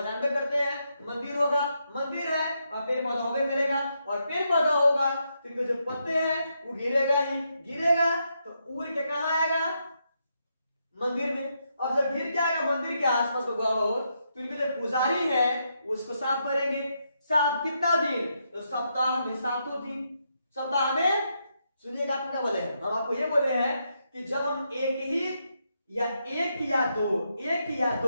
जानते करते हैं मंदिर होगा, मंदिर है वहां पेड़ पौधा होगा मिलेगा, और पेड़ पौधा होगा तो जो पत्ते हैं वो गिरेगा ही, गिरेगा तो उड़ के कहां आएगा, मंदिर में। अब जब गिर के आएगा मंदिर के आसपास तो इनके जो पुजारी है वो उसको साफ करेंगे। साफ कितना दिन, तो सप्ताह में 7 दिन। सप्ताह में सुनिएगा, आप क्या बोले हैं, हम आपको ये बोले हैं कि जब हम एक या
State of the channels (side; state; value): both; inverted; correlation -0.81